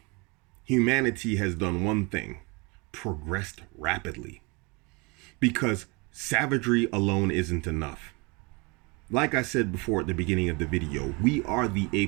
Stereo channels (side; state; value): left; quieter; 28.4 dB